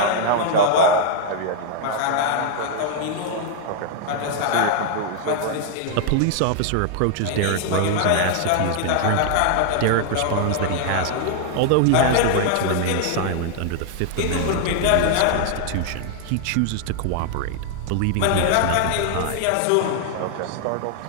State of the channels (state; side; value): different; both; correlation 0.00